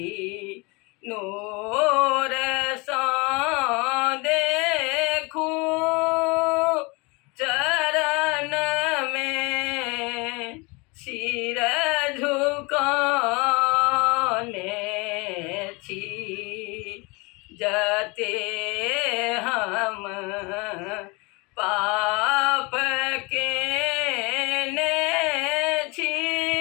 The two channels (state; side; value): quieter; right; 27.4 dB